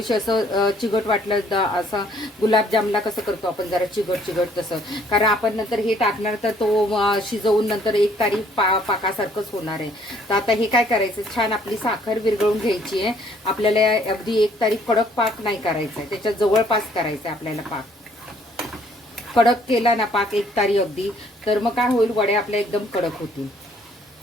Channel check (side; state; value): both; normal; correlation 0.62